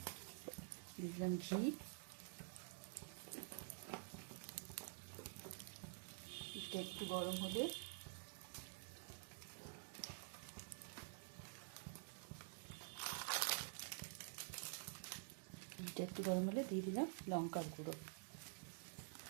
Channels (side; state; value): left; silent; digital silence